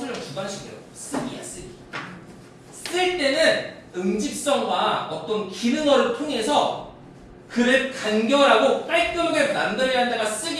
주관식이에요. 쓰기야, 쓰기. 쓸 때는 응집성과 어떤 기능어를 통해서 글을 간결하고 깔끔하게 만들어야 한다가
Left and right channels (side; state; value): both; identical; correlation 1.00